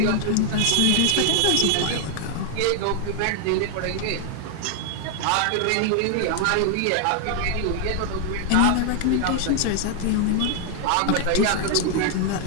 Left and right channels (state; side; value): different; both; correlation 0.00